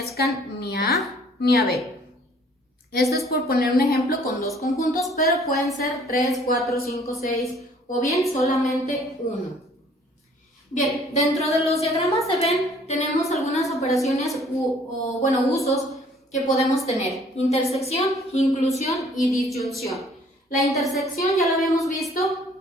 ni a A ni a B. Esto es por poner un ejemplo con dos conjuntos, pero pueden ser 3, 4, 5, 6 o bien solamente uno. Bien, dentro de los diagramas de Venn tenemos algunas operaciones usos que podemos tener: intersección, inclusión y disyunción. La intersección ya la habíamos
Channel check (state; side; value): normal; both; correlation 0.57